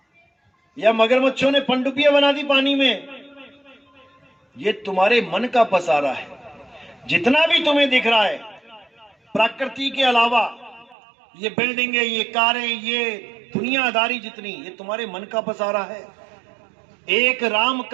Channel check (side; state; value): left; drops out; at 11.0 s